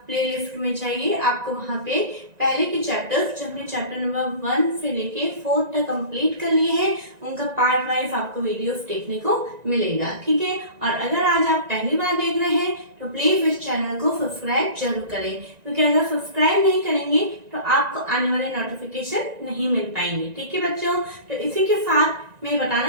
प्लेलिस्ट में जाइए, आपको वहाँ पे पहले के चैप्टर्स जो हमने चैप्टर नंबर 1 से लेके 4 तक कंप्लीट कर लिए हैं उनका पार्ट वाइज आपको वीडियोस देखने को मिलेगा। ठीक है, और अगर आज आप पहली बार देख रहे हैं तो प्लीज इस चैनल को सब्सक्राइब जरूर करें, क्योंकि अगर सब्सक्राइब नहीं करेंगे तो आपको आने वाले नोटिफिकेशन नहीं मिल पाएंगे। ठीक है बच्चों, तो इसी के साथ मैं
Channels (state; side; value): late; left; 1.9 ms